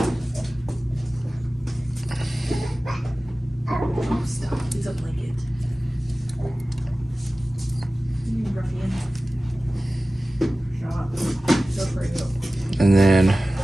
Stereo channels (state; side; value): normal; both; correlation 0.96